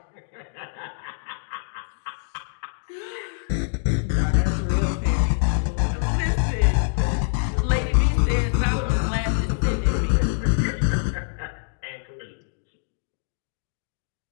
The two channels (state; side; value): silent; right; digital silence